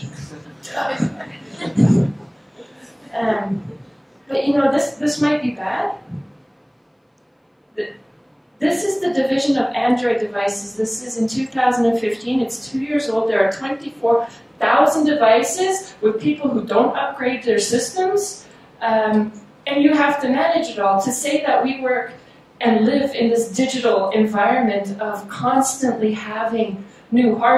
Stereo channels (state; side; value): identical; both; correlation 1.00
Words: But you know, this might be bad. This is the division of Android devices. This is in 2015. It's 2 years old. There are 24,000 devices with people who don't upgrade their systems. And you have to manage it all. To say that we work and live in this digital environment of constantly having new